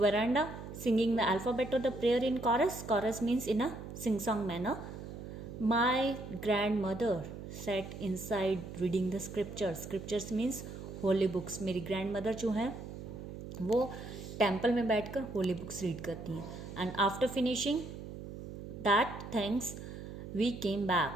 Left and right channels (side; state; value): right; noise; hum, 10 dB below the sound